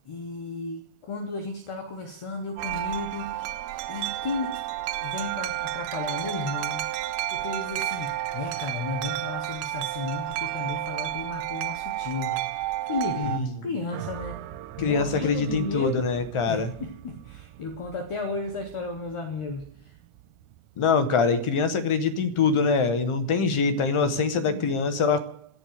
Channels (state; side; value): late; right; 1.4 ms